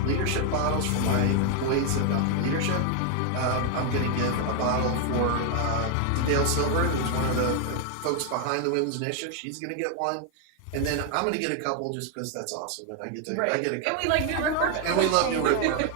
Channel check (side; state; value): both; different; correlation 0.00